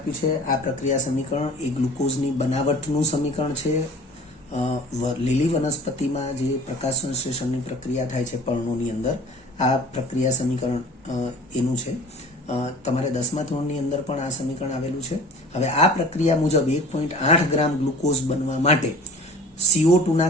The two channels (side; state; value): both; normal; correlation 0.45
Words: છે. આ પ્રક્રિયા સમીકરણ એ ગ્લુકોઝની બનાવટનું સમીકરણ છે. લીલી વનસ્પતિમાં જે પ્રકાશ સંશ્લેષણની પ્રક્રિયા થાય છે પર્ણોની અંદર, આ પ્રક્રિયા સમીકરણ એનું છે. તમારે 10મા ધોરણની અંદર પણ આ સમીકરણ આવેલું છે. હવે આ પ્રક્રિયા મુજબ 1.8 ગ્રામ ગ્લુકોઝ બનવા માટે CO2